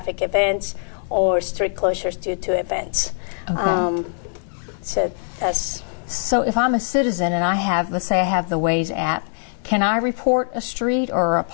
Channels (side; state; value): right; silent; digital silence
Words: events, or street closures due to events. Okay. So if I'm a citizen and let's say I have the Waze app, can I report a street or a